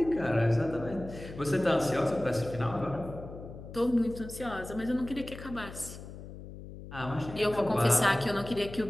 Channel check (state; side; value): noise; left; hum, 13 dB below the sound